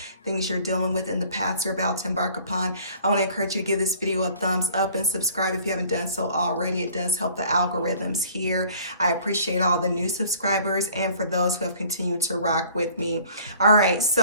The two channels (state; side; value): inverted; both; correlation -0.52